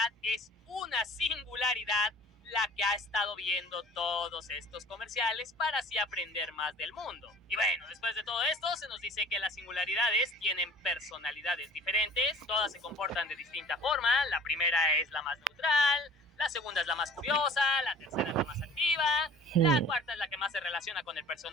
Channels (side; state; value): both; normal; correlation 0.47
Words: es una singularidad la que ha estado viendo todos estos comerciales para así aprender más del mundo. Y bueno, después de todo esto se nos dice que las singularidades tienen personalidades diferentes, todas se comportan de distinta forma. La primera es la más neutral, la segunda es la más curiosa, la tercera es la más activa, la cuarta es la que más se relaciona con el